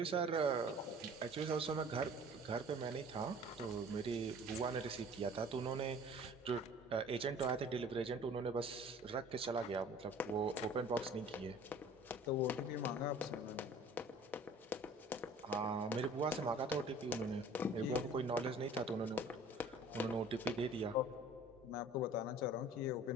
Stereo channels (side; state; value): both; normal; correlation 0.48